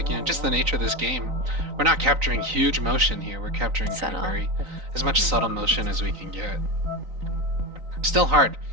just the nature of this game, we're not capturing huge motion here. We're capturing kind of as much subtle motion as we can get. Still hard.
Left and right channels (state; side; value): late; left; 3.9 ms